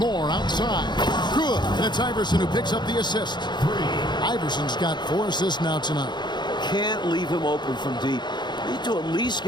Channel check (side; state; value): right; late; 0.21 ms